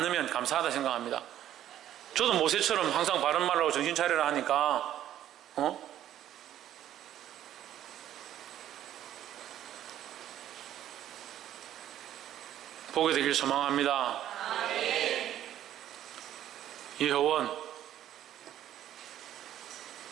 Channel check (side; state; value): left; quieter; 11.8 dB